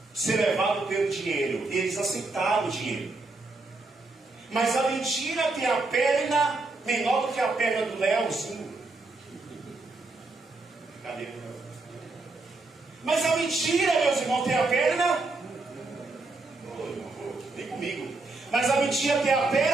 ser levados pelo dinheiro. E eles aceitaram o dinheiro. Mas a mentira tem a perna menor do que a perna do Leozinho. Cadê? Mas a mentira, meus irmãos, tem a perna. Vem comigo. Mas a mentira tem a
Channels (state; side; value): quieter; left; 3.4 dB